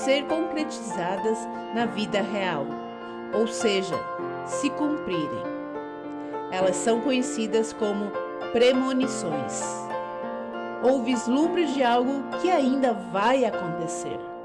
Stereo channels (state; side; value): identical; both; correlation 1.00